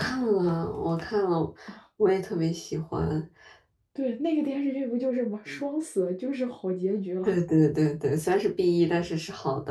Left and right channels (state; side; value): identical; both; correlation 1.00